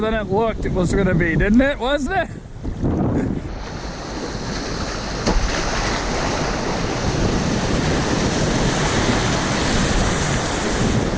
it looked it was gonna be, didn't it? Wasn't it?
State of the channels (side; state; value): both; identical; correlation 1.00